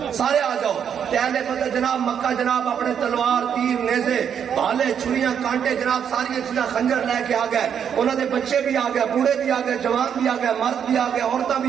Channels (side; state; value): left; quieter; 8.1 dB